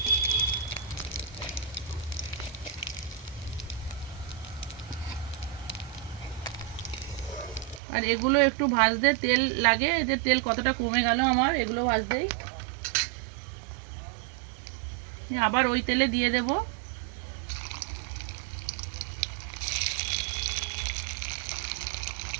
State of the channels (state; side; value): drops out; left; at 7.8 s